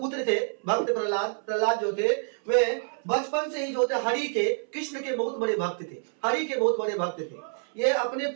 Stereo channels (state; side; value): silent; left; 60 dB below the other